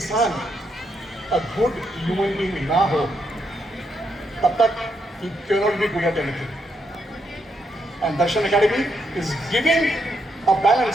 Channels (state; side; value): normal; both; correlation 0.79